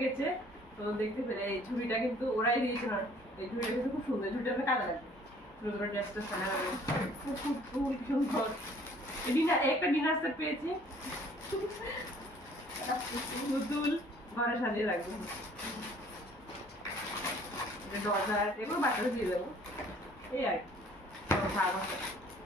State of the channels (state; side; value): normal; both; correlation 0.56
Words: গেছে তো দেখতে পেলে এই ঝুড়িটা কিন্তু ওরাই দিয়েছে না এই ঝুড়িটা কিন্তু খুব সুন্দর ঝুড়িটা আমরা কাজে লাগবে সুন্দর ড্রেসটা সারা হবে খুব সুন্দর একটা ডিনার সেট পেয়েছি পুতুল ঘরে সাজিয়ে রাখবো ডজার এগুলো বাচ্চাদের দিয়ে দেবো এই আর